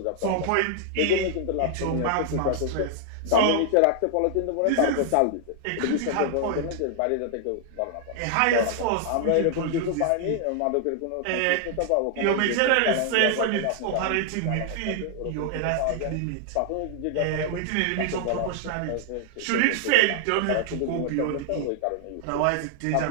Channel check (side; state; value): both; different; correlation 0.00